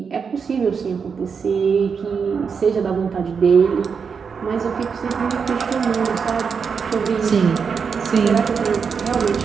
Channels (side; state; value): left; quieter; 6.0 dB